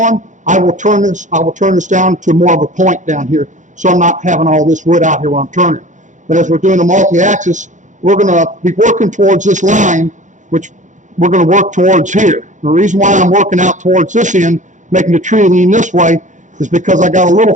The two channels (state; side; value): late; left; 0.36 ms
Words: I will turn this down to more of a point down here, so I'm not having all this wood out here while I'm turning. But as we're doing the multi-axis, we're going to be working towards this line, which we're going to work towards here. The reason why I'm working out towards this end, making the tree lean this way, is because I got a little